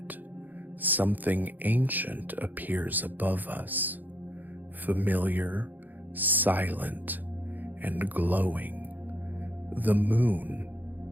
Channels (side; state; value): left; late; 0.085 ms